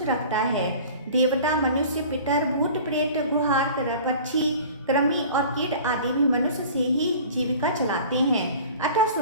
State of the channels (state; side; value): inverted; both; correlation -0.43